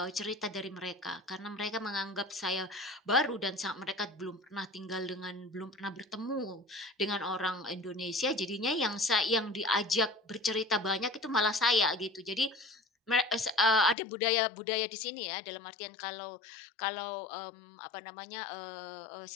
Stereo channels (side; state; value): right; drops out; at 14.0 s